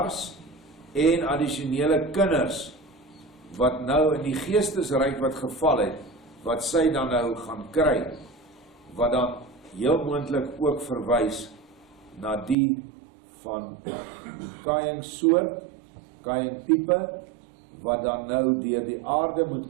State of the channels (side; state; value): left; drops out; at 12.6 s